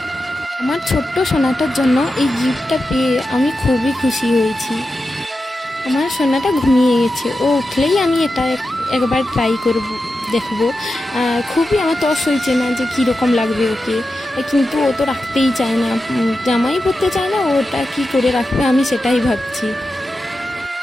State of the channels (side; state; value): both; normal; correlation 0.91